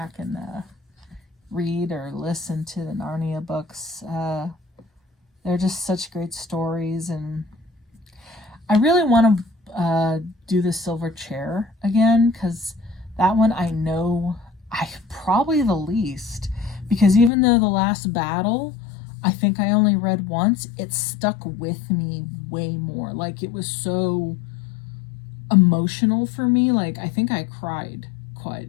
and read or listen to the Narnia books. They're just such great stories, and I really want to do the Silver Chair again, because that one I know I probably the least, because even though the last battle I think I only read once, it stuck with me way more. Like, it was so emotional for me. Like, I think I cried quite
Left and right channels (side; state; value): right; drops out; at 17.3 s